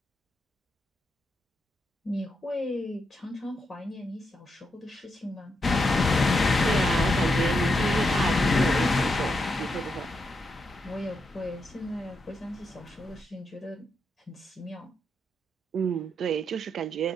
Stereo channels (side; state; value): both; normal; correlation 0.83